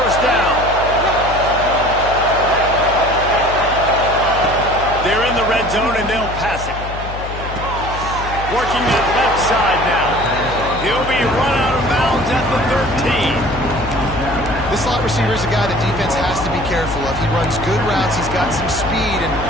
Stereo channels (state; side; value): noise; left; hum, 9 dB below the sound